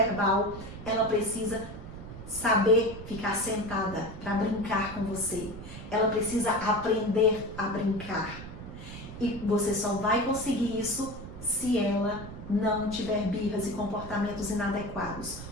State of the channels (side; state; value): right; noise; rumble, 12 dB below the sound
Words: ela precisa saber ficar sentada para brincar com você. Ela precisa aprender a brincar. E você só vai conseguir isso se ela não tiver birras e comportamentos inadequados.